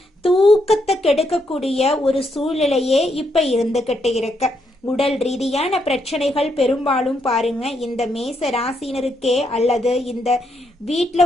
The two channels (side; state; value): both; normal; correlation 0.77